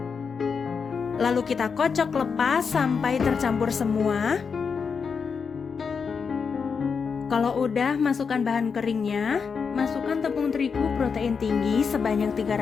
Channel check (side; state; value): right; quieter; 5.8 dB